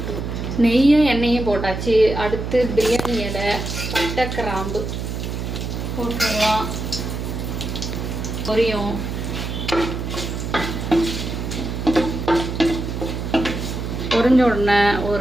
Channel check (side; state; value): right; noise; hum, 4 dB below the sound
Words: நெய்யும் எண்ணெயும் போட்டாச்சு. அடுத்து பிரியாணி இலை, பட்டை, கிராம்பு போட்டுடலாம். பொரியும். பொரிஞ்ச உடனே